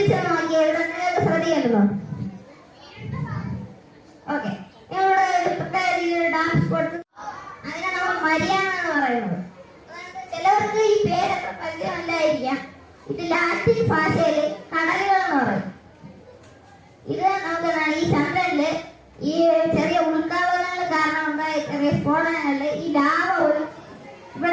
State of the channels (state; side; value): identical; both; correlation 1.00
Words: നോക്കിയേ. ഇവിടെ നിങ്ങൾക്ക് ശ്രദ്ധിക്കണ്ടോ? ഓക്കെ, ഇവിടെ പ്രത്യേക രീതിയിൽ ഡാൻസ് കൊടുത്ത് അതിനെ നമ്മൾ മരിയാണെന്ന് പറയുന്നത്. ചിലവർക്ക് ഈ പേരൊക്കെ പരിചയമല്ലായിരിക്കാം. ഇത് ലാറ്റിൻ ഭാഷയില് കടലുകൾ എന്ന് പറയും. ഇത് നമുക്ക് ഈ ചന്ദ്രനില് ഈ ചെറിയ ഉൾക്കാവലങ്ങൾ കാരണം ഉണ്ടായ ചെറിയ സ്ഫോടനങ്ങളില് ഈ ലാവ ഒരു